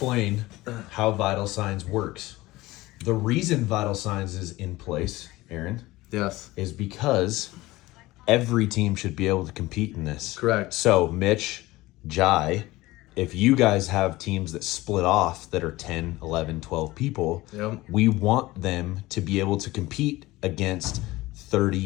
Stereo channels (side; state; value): right; quieter; 18.9 dB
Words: how Vital Signs works. The reason Vital Signs is in place, Aaron, Yes. is because every team should be able to compete in this. Correct. So, Mitch, Jai, if you guys have teams that split off that are 10, 11, 12 people, Yep. we want them to be able to compete against